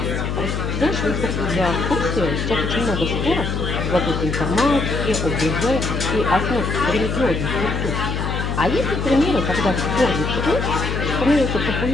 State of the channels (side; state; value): left; noise; hum, 2 dB below the sound